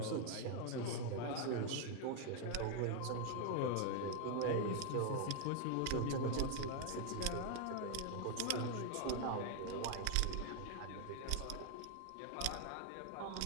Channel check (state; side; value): different; both; correlation 0.00